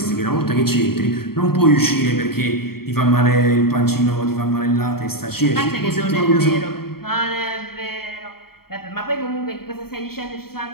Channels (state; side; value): late; right; 0.94 ms